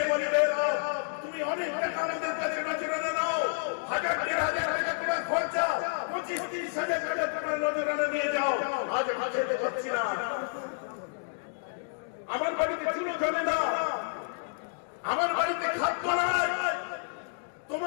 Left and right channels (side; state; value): right; silent; digital silence